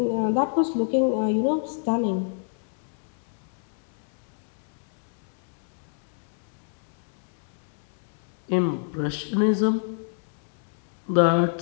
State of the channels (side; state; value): right; silent; 60 dB below the other